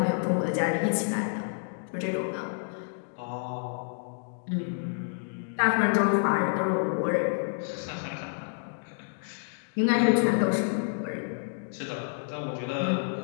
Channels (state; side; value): silent; right; digital silence